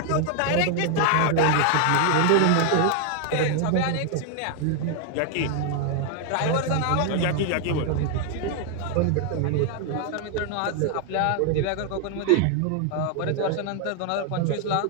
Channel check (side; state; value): both; different; correlation 0.00